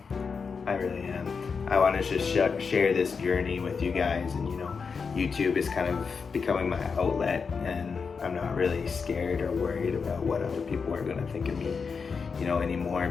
I really am. I want to just share this journey with you guys, and you know, YouTube is kind of becoming my outlet, and I'm not really scared or worried about what other people are going to think of me, you know, anymore,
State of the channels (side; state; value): right; quieter; 5.4 dB